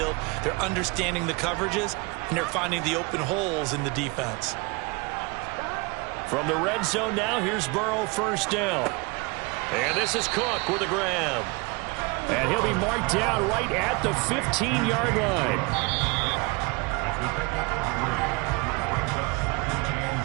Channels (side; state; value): left; quieter; 27.8 dB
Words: they're understanding the coverages, and they're finding the open holes in the defense. From the red zone now, here's Burrow, first down. And this is Cook with a grab. And he'll be marked down right at the 15-yard line.